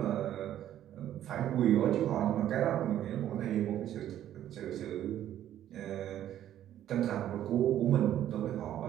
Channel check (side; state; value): left; quieter; 11.6 dB